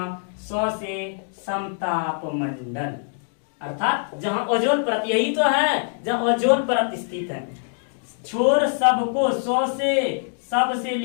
100 से समताप मंडल, अर्थात जहां ओजोन परत, यही तो है जहां ओजोन परत स्थित है। छोड़ सबको 100 से, सब से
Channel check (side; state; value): right; silent; 63 dB below the other